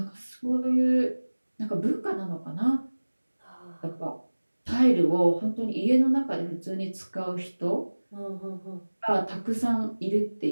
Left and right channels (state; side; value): inverted; both; correlation -1.00